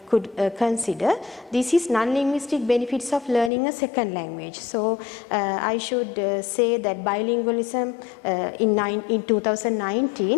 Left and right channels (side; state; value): right; drops out; at 3.5 s